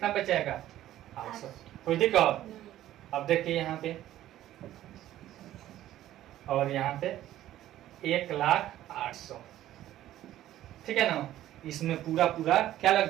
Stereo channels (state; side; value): quieter; left; 13.4 dB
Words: बचेगा 800। कोई दिक्कत। अब देखिए यहाँ पे और यहाँ पे 1,08,000, ठीक है ना। इसमें पूरा पूरा क्या